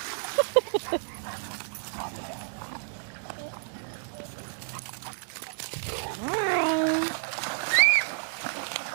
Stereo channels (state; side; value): silent; left; digital silence